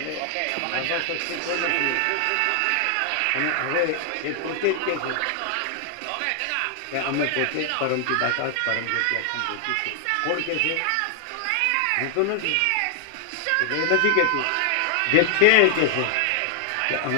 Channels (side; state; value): both; different; correlation 0.00